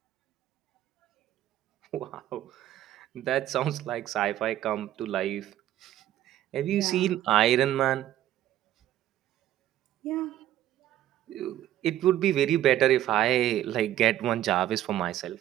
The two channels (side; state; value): left; quieter; 12.9 dB